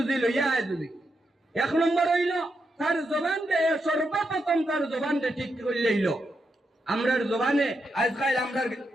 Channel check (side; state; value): both; normal; correlation 0.84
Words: লইয়া আয়। যদি এক নম্বর হইল তার জবানটা, সর্বপ্রথম তার জবানটা ঠিক করে লইল। আমরার জবানে আজকাল